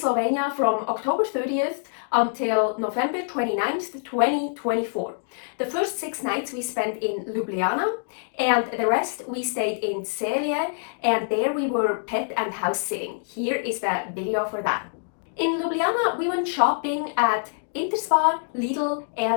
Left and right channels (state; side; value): silent; right; digital silence